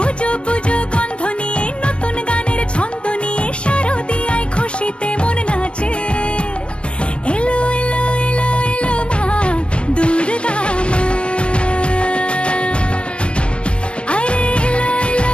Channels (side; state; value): right; late; 0.058 ms